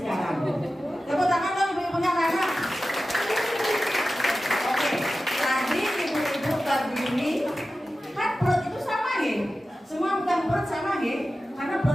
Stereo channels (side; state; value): both; normal; correlation 0.94